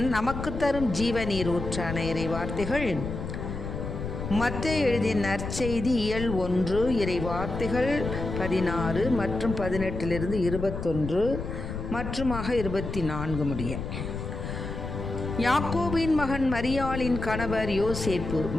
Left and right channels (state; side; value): noise; left; rumble, 6 dB below the sound